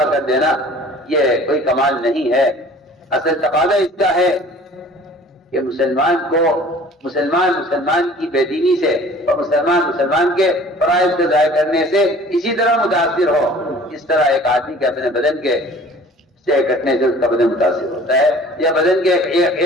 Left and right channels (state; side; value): normal; both; correlation 0.49